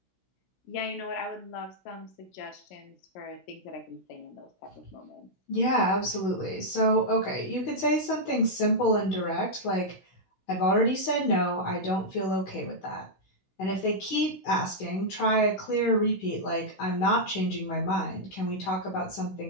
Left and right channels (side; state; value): right; late; 16 ms